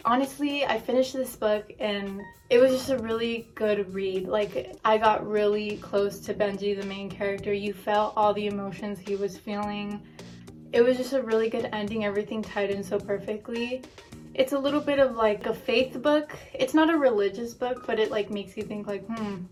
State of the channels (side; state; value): both; identical; correlation 1.00